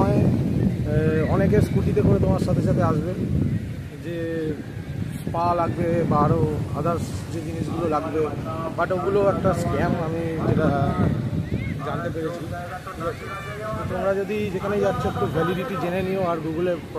অনেকে স্কুটিতে করে তোমার সাথে সাথে আসবে, যে স্পা লাগবে বা আরও আদার্স যে জিনিসগুলো লাগবে, বাট ওগুলো একটা স্ক্যাম আমি যেটা জানতে পেরেছি। ঠিক আছে, তো তোমরা যদি যেখানেই যাচ্ছ একটু ভ্যালিডিটি জেনে নিও আর গুগলে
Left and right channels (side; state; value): both; identical; correlation 1.00